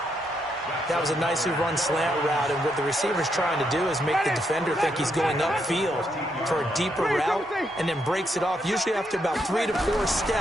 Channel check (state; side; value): normal; both; correlation 0.78